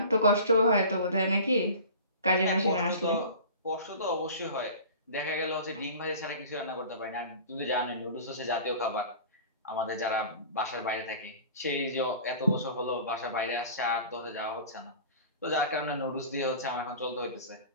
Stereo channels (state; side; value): inverted; both; correlation -0.40